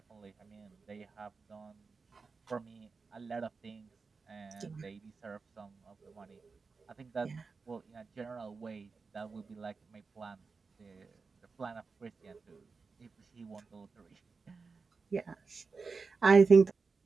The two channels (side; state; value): left; quieter; 4.6 dB